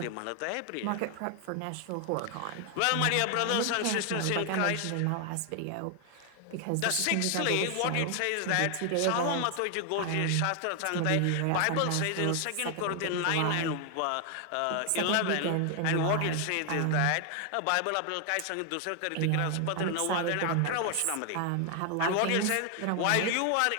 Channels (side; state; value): both; different; correlation 0.00